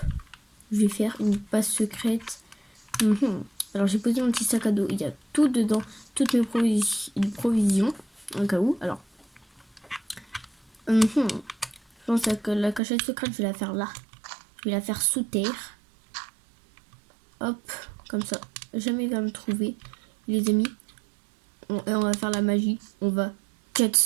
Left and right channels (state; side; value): drops out; left; at 12.8 s